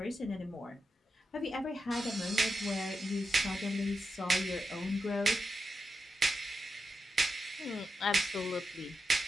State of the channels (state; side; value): normal; both; correlation 0.87